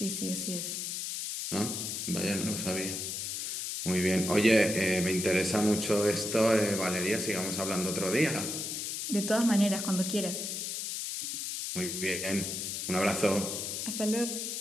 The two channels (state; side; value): noise; left; hiss, 3 dB below the sound